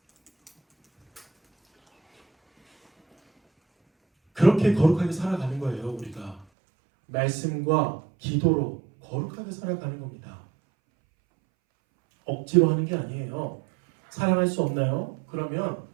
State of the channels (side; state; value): left; drops out; at 6.5 s